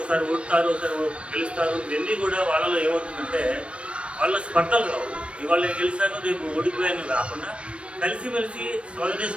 ఓడుతారు, ఒకసారి గెలుస్తారు. ఇవన్నీ కూడా వాళ్ళలో ఏమవుతుందంటే వాళ్ళ స్పర్ధలు రావు. ఇవాళ నేను గెలిచాను, రేపు ఓడిపోయాను కాకుండా కలిసిమెలిసి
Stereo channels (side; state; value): left; late; 0.060 ms